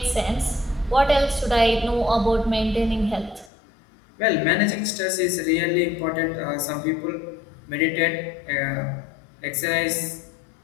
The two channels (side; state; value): right; drops out; at 3.5 s